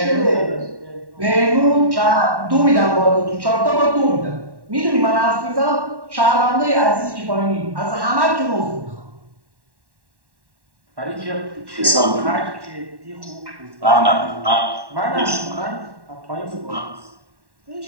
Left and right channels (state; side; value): late; left; 1.1 ms